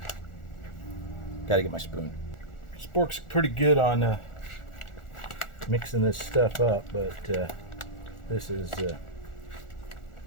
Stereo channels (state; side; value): late; right; 1.4 ms